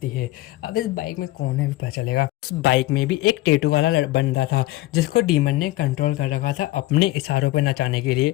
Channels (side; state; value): right; quieter; 17.6 dB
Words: है। अब इस बाइक में कौन है भी पता चलेगा। उस बाइक में भी एक टेटू वाला बंदा था जिसको डीमन ने कंट्रोल कर रखा था अपने इशारों पर नचाने के